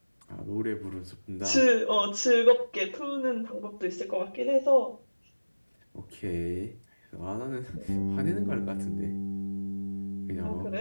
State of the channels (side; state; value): both; inverted; correlation -1.00